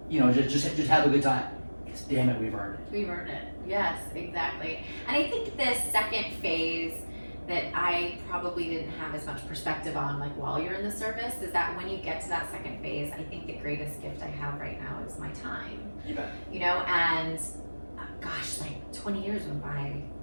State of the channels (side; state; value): both; inverted; correlation -1.00